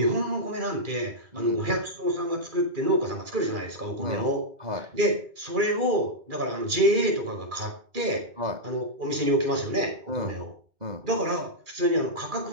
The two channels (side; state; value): left; late; 2.4 ms